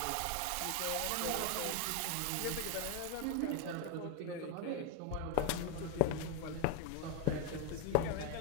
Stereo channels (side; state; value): both; different; correlation 0.01